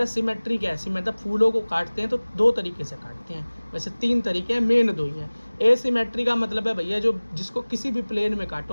सिमेट्री क्या है, मतलब फूलों को काटते हैं तो 2 तरीके से काटते हैं, वैसे 3 तरीके हैं, मेन 2 ही हैं। एसिमेट्री का मतलब है भैया जो जिसको किसी भी प्लेन में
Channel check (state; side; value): inverted; both; correlation -1.00